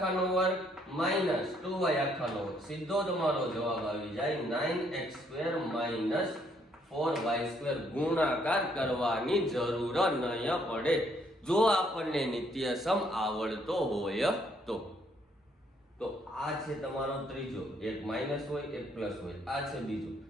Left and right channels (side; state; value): both; normal; correlation 0.68